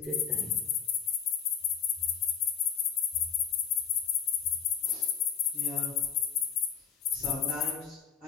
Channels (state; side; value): quieter; right; 8.0 dB